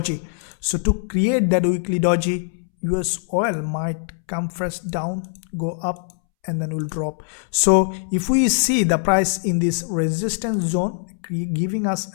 So to create that weekly doji, USOIL might come first down, go up, and then will drop. So if we see the price in this resistance zone giving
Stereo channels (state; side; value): silent; right; 64 dB below the other